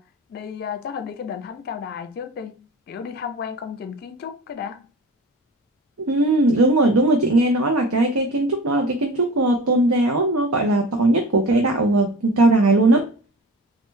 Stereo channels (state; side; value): normal; both; correlation 0.39